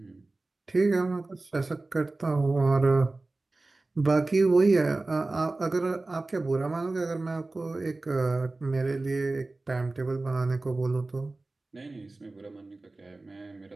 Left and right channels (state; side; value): quieter; left; 3.2 dB